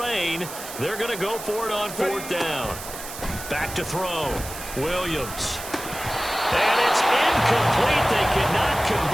they're going to go for it on 4th down. Back to throw. Williams. And it's incomplete. They cannot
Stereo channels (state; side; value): noise; right; hiss, 11 dB below the sound